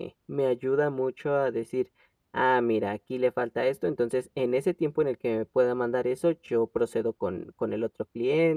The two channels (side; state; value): both; identical; correlation 1.00